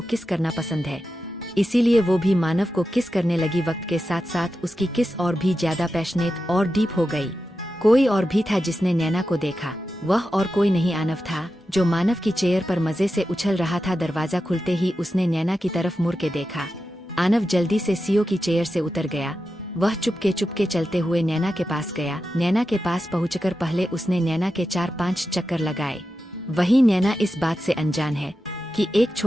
किस करना पसंद है, इसीलिए वो भी मानव को किस करने लगी। वक्त के साथ साथ उसकी किस और भी ज्यादा पैशनेट और डीप हो गई। कोई और भी था जिसने नैना को देखा। वह और कोई नहीं आनव था, जो मानव की चेयर पर मजे से उछल रहा था। दरवाजा खुलते ही उसने नैना की तरफ मुड़ के देखा। आनव जल्दी से सीओ की चेयर से उतर गया। वह चुपके चलते हुए नैना के पास गया। नैना के पास पहुंचकर पहले उसने नैना के 4-5 चक्कर लगाए। वही नैना इस बात से अनजान है कि एक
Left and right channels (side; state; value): both; normal; correlation 0.91